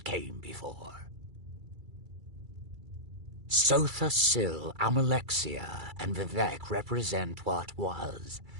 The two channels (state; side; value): late; left; 2.3 ms